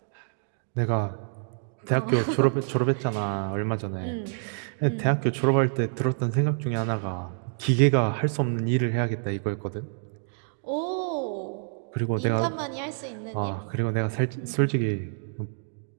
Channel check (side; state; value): left; silent; digital silence